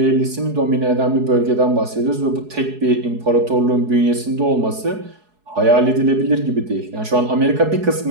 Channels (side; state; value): left; late; 4.7 ms